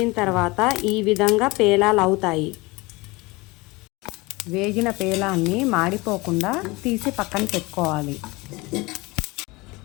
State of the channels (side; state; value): right; quieter; 23.5 dB